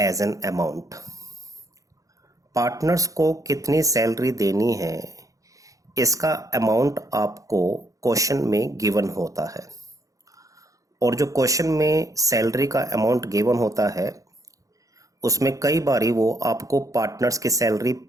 an amount. Partners को कितनी सैलरी देनी है इसका अमाउंट आपको क्वेश्चन में गिवन होता है, और जो क्वेश्चन में सैलरी का अमाउंट गिवन होता है उसमें कई बारी वो आपको पार्टनर्स की सैलरी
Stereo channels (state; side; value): late; left; 0.16 ms